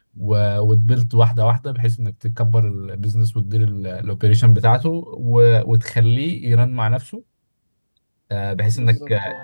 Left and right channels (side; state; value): both; inverted; correlation -1.00